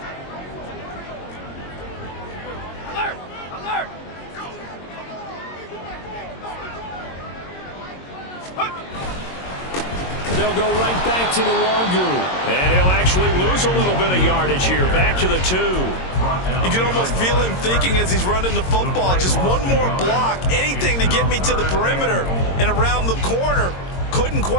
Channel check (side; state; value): right; late; 22 ms